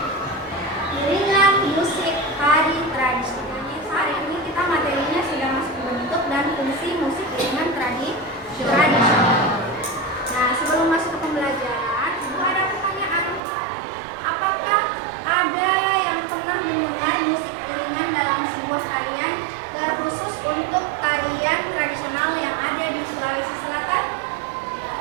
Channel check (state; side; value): drops out; left; at 13.4 s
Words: iringan musik tari tradisional. Hari ini kita materinya sudah masuk bentuk dan fungsi musik iringan tradisional. Nah, sebelum masuk ke pembelajaran, ada pertanyaan. Apakah ada yang pernah mendengar musik iringan dalam sebuah tarian terkhusus untuk tarian tradisional yang ada di Sulawesi Selatan?